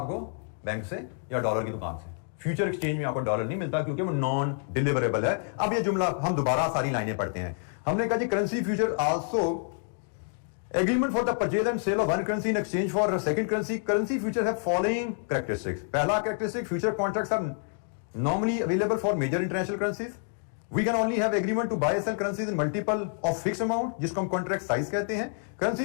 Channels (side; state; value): right; silent; 59 dB below the other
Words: बैंक से या डॉलर की दुकान से, फ्यूचर एक्सचेंज में आपको डॉलर नहीं मिलता क्योंकि वो नॉन डिलीवरेबल है। अब ये जुमला हम दोबारा सारी लाइनें पढ़ते हैं। हमने कहा जी currency future also agreement for the purchase and sale of one currency in exchange for second currency. Currency future have following characteristics. पहला characteristic, future contracts are normally available for major international currencies. We can only have agreement to buy and sell currencies in multiple of fixed amount, जिसको हम contract size कहते हैं।